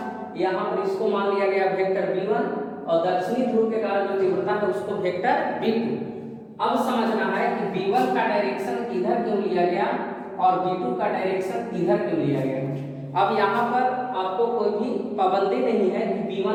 यहाँ पर इसको मान लिया गया वेक्टर v1 और दक्षिणी ध्रुव के कारण जो तीव्रता है उसको वेक्टर v2। अब समझना है कि v1 का डायरेक्शन इधर क्यों लिया गया और v2 का डायरेक्शन इधर क्यों लिया गया। अब यहाँ पर आपको कोई भी पाबंदी नहीं है कि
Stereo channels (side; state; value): both; identical; correlation 1.00